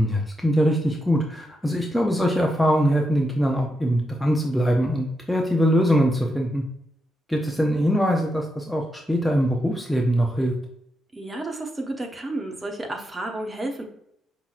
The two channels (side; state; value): both; normal; correlation 0.85